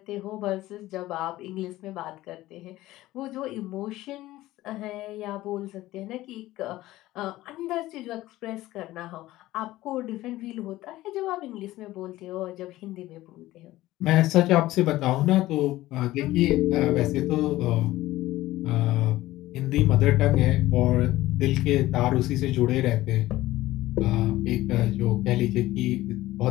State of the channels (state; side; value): quieter; right; 16.5 dB